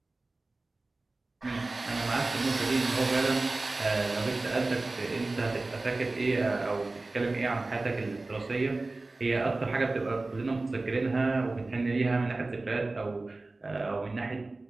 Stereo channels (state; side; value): quieter; left; 3.2 dB